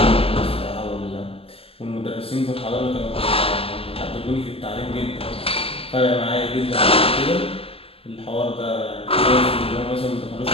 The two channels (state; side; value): late; right; 0.28 ms